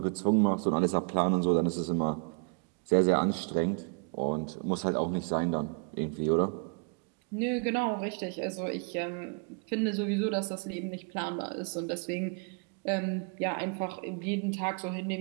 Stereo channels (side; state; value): left; quieter; 36.2 dB